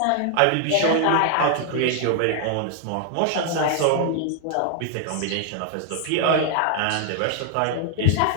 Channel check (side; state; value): both; different; correlation 0.00